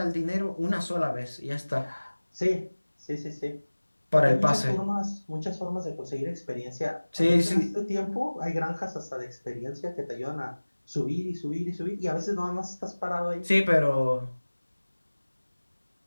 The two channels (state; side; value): inverted; both; correlation -1.00